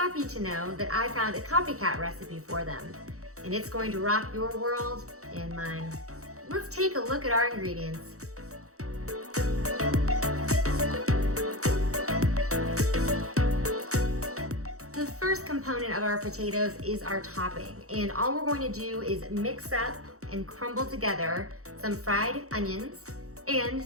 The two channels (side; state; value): left; late; 0.65 ms